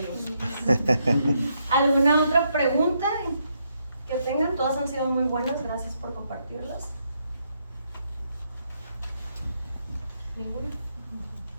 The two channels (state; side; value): inverted; both; correlation -0.77